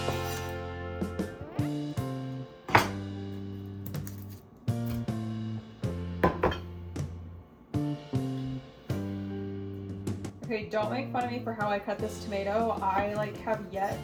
Okay, don't make fun of me for how I cut this tomato. I have yet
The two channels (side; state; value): both; identical; correlation 1.00